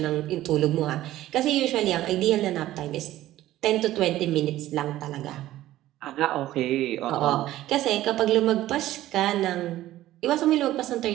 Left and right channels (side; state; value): left; quieter; 14.7 dB